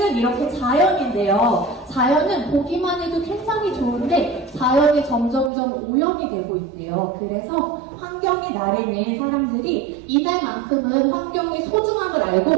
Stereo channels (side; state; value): left; drops out; at 5.5 s